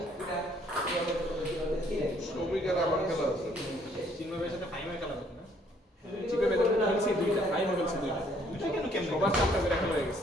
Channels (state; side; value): normal; both; correlation 0.64